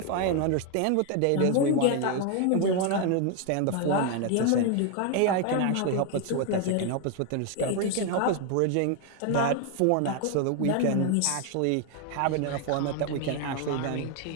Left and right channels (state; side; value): different; both; correlation 0.01